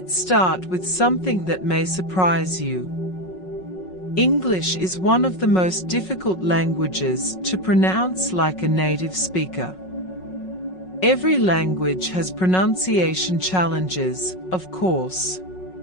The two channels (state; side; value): late; right; 5.4 ms